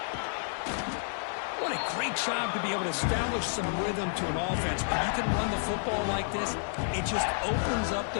What a great job to be able to establish some rhythm to an offense. When you can run the football like this, it just opens up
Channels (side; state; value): right; silent; 58 dB below the other